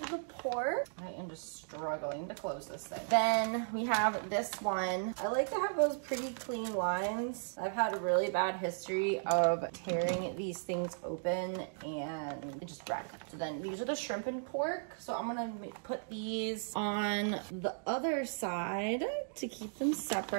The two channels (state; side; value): silent; left; digital silence